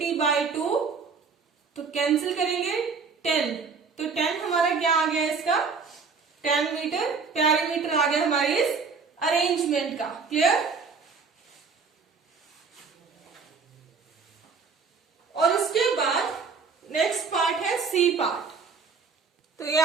तो कैंसिल करेंगे 10, तो 10 हमारा क्या आ गया, इसका 10 मीटर पेरीमीटर आ गया हमारे इस अरेंजमेंट का। क्लियर? और उसके बाद नेक्स्ट पार्ट है सी पार्ट। तो ये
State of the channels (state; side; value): quieter; left; 5.1 dB